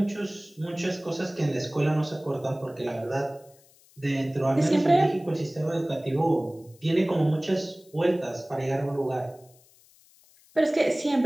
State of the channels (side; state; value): left; noise; hiss, 29 dB below the sound